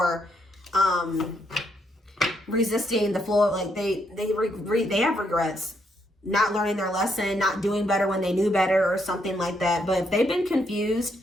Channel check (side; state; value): both; normal; correlation 0.75